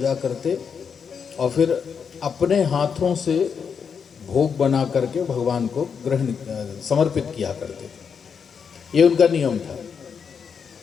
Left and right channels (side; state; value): right; quieter; 6.5 dB